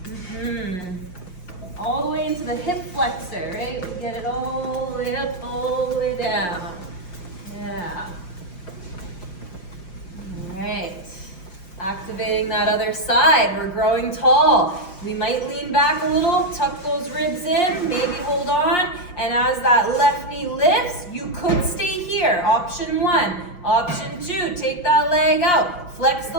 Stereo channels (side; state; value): right; late; 5.7 ms